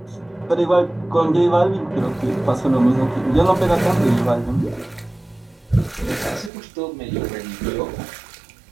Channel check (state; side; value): drops out; left; at 6.5 s